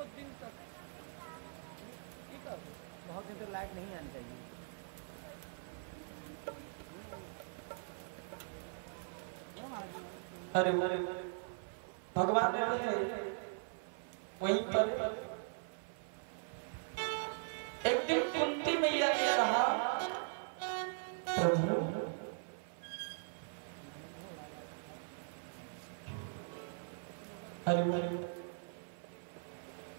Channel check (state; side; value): silent; left; 51 dB below the other